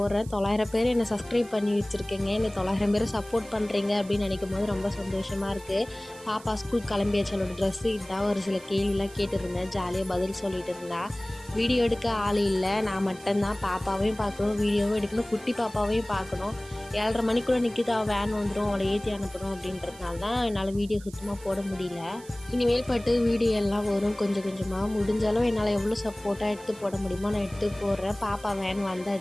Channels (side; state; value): right; noise; hiss, 21 dB below the sound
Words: 900 பேர் என்னை சப்ஸ்கிரைப் பண்ணி வச்சுருக்கேங்க. என்னை 900 பேர் சப்போர்ட் பண்ணுறீங்க அப்படின்னு நினைக்கும் போது ரொம்ப சந்தோஷமாக இருக்குது. பாப்பா ஸ்கூல் கிளம்பியாச்சு. அவளோட ட்ரெஸ்ஸு இதான். ஒரு சில கேள்விலாம் கேட்டுருந்தேன். ஜாலியாக பதில் சொல்லிட்டு இருந்தா. வீடியோ எடுக்க ஆள் இல்லை, நான் மட்டும்தான். பாப்பாவையும் பார்க்கணும், வீடியோவும் எடுக்கணும், குட்டி பாப்பாவையும் பார்க்கணும். 7:30 மணிக்குள்ளே நிற்கிது. அவள் வேன் வந்துடும், அவளை ஏற்றி அனுப்பணும் அப்படின்றதுனால தான் என்னால் வீடியோ சுத்தமாக போட முடியல. இனிமேல் பட்டு வீடியோ எல்லாம் வரும் கொஞ்சம் கொஞ்சமாக. முடிஞ்சாலும் என்னால் எவ்வளோ சப்போர்ட்டாக எடுத்து போட முடியுமோ நான் எடுத்து போடுறேன். பாப்பா வேன்